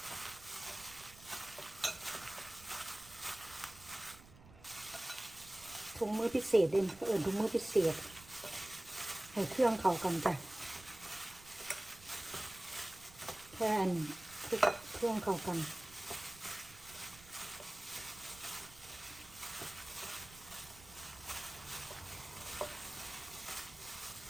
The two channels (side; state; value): right; noise; rumble, 20 dB below the sound